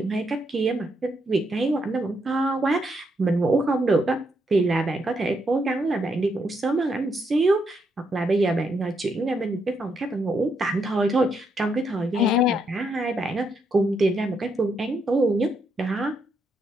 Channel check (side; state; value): both; normal; correlation 0.78